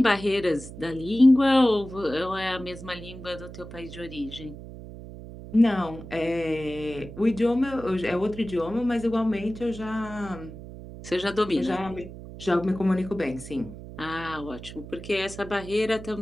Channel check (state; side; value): noise; right; hum, 13 dB below the sound